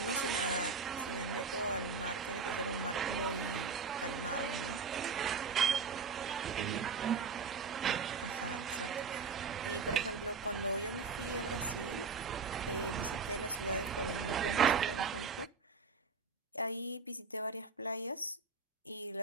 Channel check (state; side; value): quieter; left; 5.0 dB